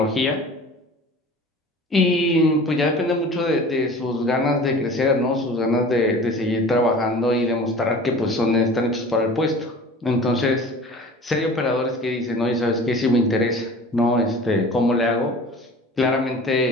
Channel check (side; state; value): both; normal; correlation 0.42